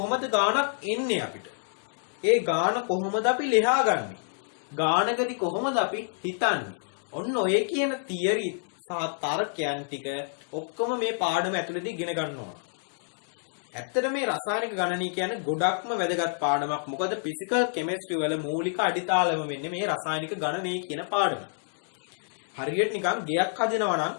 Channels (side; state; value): right; silent; digital silence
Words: ගානක් එන්නේ අපිට? ඒ ගාන කොහොමද අපි ලියාගන්නේ? ගානකදී කොහොමද අපි හිතන්නේ? ඔන්න ඔය කියන තියරි සහ තර්කයන් ටික ඔක්කොම මේ පාඩම ඇතුළතදී ඉගෙන ගන්න ඕන. ඇත්තට මේ රසායනික ගණනය කියන්නේ ගොඩක්ම වැදගත් පාඩමක්. මොකද ෆිසිකල් කෙමිස්ට්‍රි වල මූලික අඩිතාලම වෙන්නේ මේ රසායනික ගණනය කියන පාඩම. හරියට නිකන් ගෙයක් හදනවා නම්